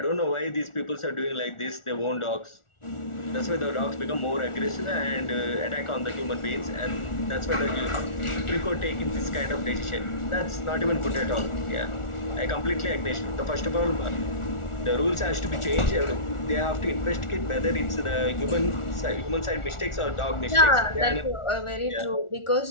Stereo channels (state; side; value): late; right; 1.4 ms